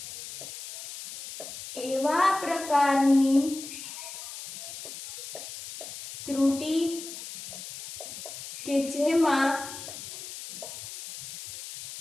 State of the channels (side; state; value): left; noise; hiss, 11 dB below the sound